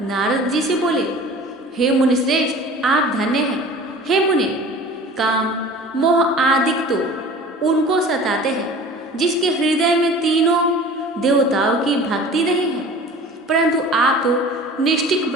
नारद जी से बोले, हे मुनिश्रेष्ठ, आप धन्य हैं। हे मुनि, काम मोह आदिक तो उनको सताते हैं जिसके हृदय में तीनों देवताओं की भक्ति नहीं है, परंतु आप तो निष्ठिक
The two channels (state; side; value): normal; both; correlation 0.42